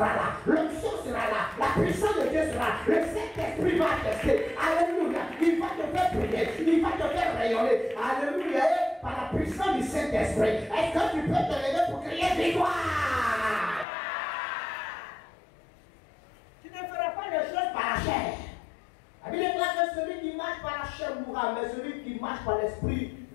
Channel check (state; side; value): drops out; right; at 13.9 s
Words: là, l'onction sera là, la puissance de Dieu sera là, le Saint-Esprit va tester. Alléluia. Il va te faire prier, il va te faire rayonner. Alléluia. Par la puissance du Saint-Esprit. Est-ce que tu peux te lever pour crier victoire? Tu ne feras pas les choses par la chair. La Bible déclare que celui qui marche par la chair mourra, mais celui qui marche par l'esprit